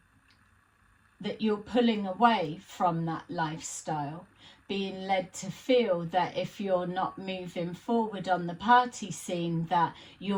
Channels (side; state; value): both; identical; correlation 1.00